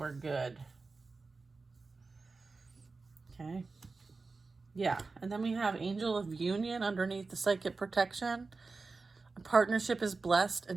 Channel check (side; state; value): left; quieter; 4.0 dB